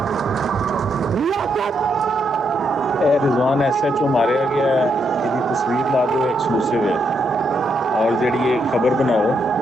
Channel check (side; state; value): both; normal; correlation 0.78